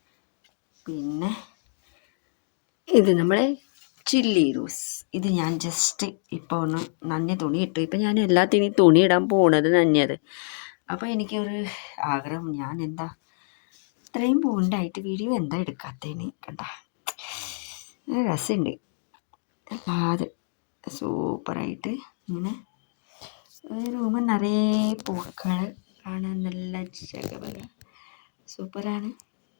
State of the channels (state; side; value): silent; right; digital silence